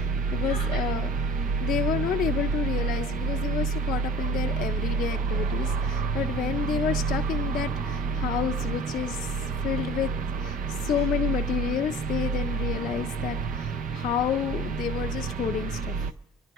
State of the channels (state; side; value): normal; both; correlation 0.43